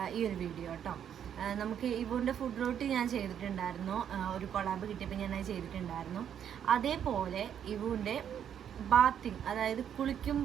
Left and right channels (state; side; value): quieter; left; 9.0 dB